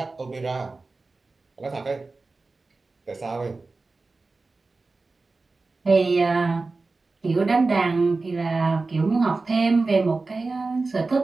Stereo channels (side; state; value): left; quieter; 3.7 dB